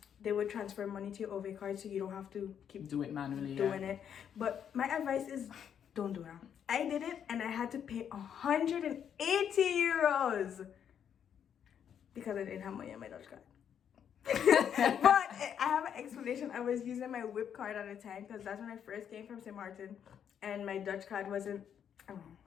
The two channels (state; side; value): quieter; right; 8.6 dB